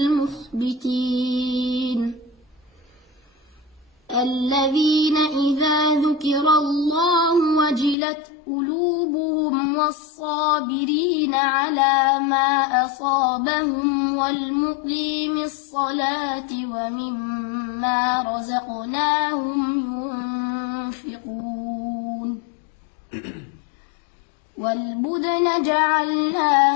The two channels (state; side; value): drops out; right; at 8.0 s